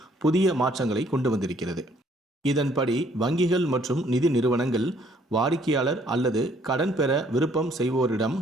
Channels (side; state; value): both; normal; correlation 0.64